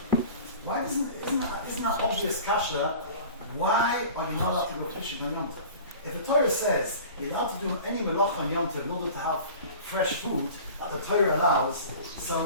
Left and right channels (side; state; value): both; inverted; correlation -0.41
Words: Why isn't that obvious kasha? Why are you not allowed to go fishing on Yom Tov? If the Torah says you're allowed to do any Melacha on Yom Tov in order to have fresh food that the Torah allows,